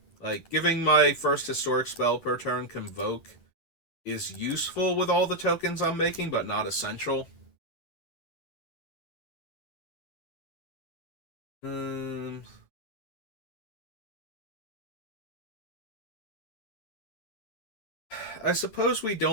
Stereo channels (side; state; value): right; late; 10 ms